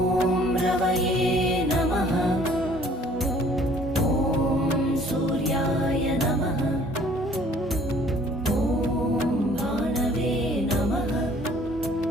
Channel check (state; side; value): normal; both; correlation 0.56